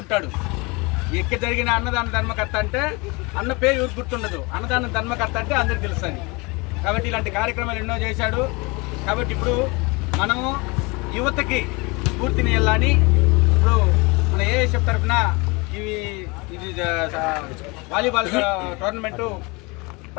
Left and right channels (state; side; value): quieter; right; 27.0 dB